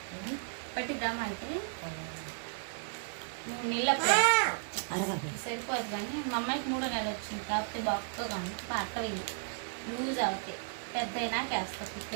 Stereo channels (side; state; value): left; silent; digital silence